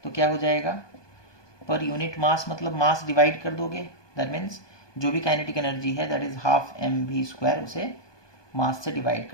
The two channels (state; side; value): late; right; 1.2 ms